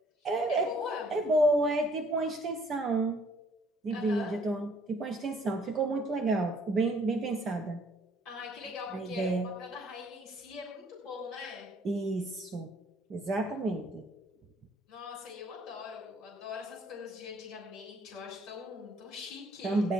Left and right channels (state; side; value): normal; both; correlation 0.61